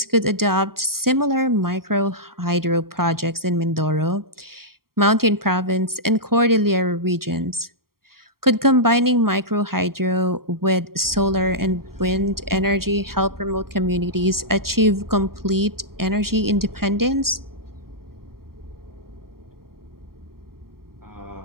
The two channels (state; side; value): late; left; 0.93 ms